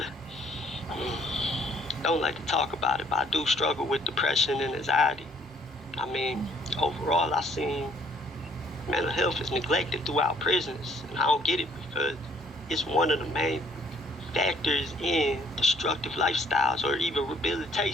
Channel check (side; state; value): both; normal; correlation 0.62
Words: Don't like to talk about it, but I do struggle with depression and anxiety. I mean, overall, I seen mental health is neglected throughout prisons, and I don't get it because it's one of the main factors in destructive lifestyles or even